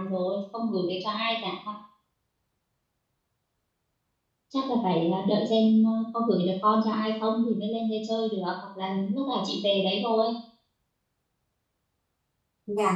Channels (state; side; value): identical; both; correlation 1.00